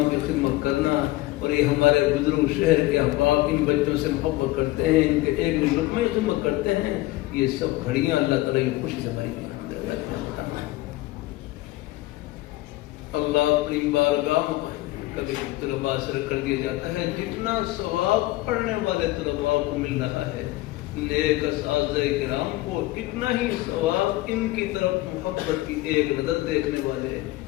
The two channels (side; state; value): right; quieter; 18.3 dB